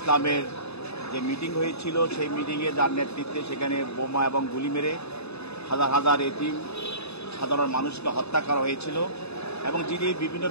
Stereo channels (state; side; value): late; right; 0.79 ms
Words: যে মিটিং হয়েছিল, সেই মিটিংয়ে যার নেতৃত্বে সেখানে বোমা এবং গুলি মেরে হাজার হাজার এতিম সাধারণ মানুষকে হত্যা করা হয়েছিল, এবং যিনি বিভিন্ন